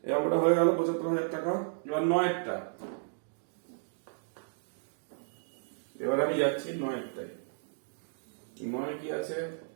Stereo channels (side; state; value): left; silent; digital silence